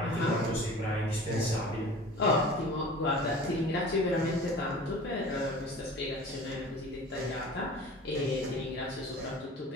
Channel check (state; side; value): normal; both; correlation 0.41